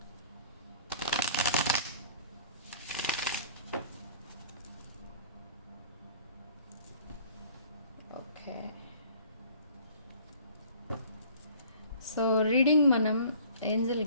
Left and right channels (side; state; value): both; inverted; correlation -0.50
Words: ఓకే, సో రీడింగ్ మనం ఏంజల్